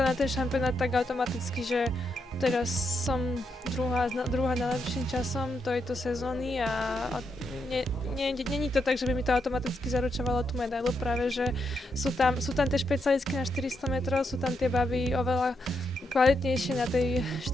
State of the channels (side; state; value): both; normal; correlation 0.82